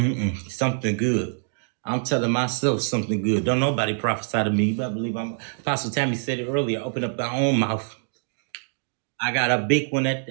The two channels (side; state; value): left; silent; digital silence